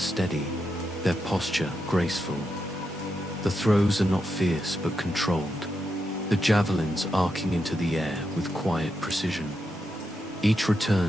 their posture graceful. The throws are not fierce but controlled, the javelins arcing into the air with quiet precision. Each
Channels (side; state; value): both; normal; correlation 0.85